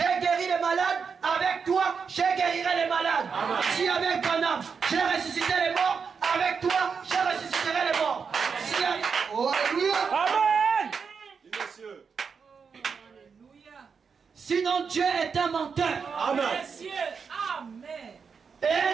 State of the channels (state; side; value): quieter; left; 5.8 dB